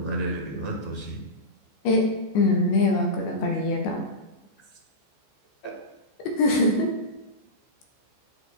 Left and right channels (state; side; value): late; right; 14 ms